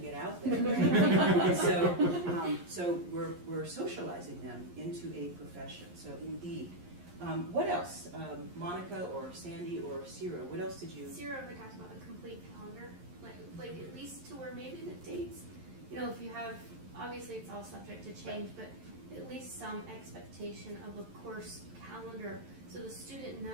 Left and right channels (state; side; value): late; left; 11 ms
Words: get out there, right? And so we're socializing them into a profession. So indeed. What else? Monica or Sandy or Ciro, what else did you? Ciro ever talks about a complete calendar, like at least to where maybe the dates, if you have, obviously it's all subject to change, but at least some expectation of a course calendar so the student